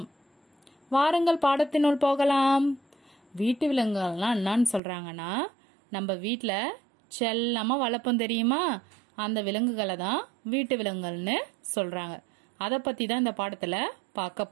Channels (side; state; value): left; drops out; at 4.8 s